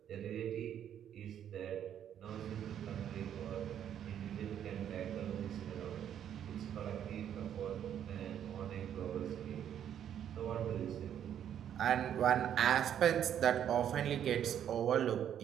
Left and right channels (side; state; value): left; quieter; 9.7 dB